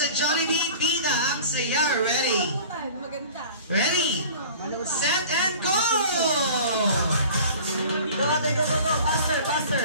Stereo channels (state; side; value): inverted; both; correlation -0.43